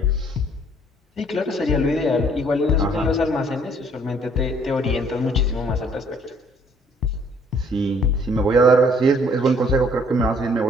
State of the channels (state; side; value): normal; both; correlation 0.62